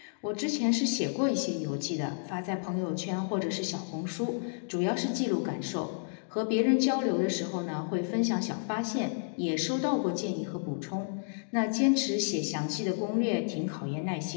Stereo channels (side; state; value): right; silent; digital silence